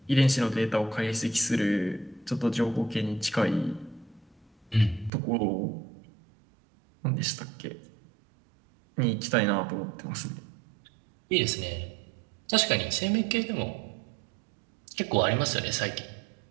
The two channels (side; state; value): left; drops out; at 5.1 s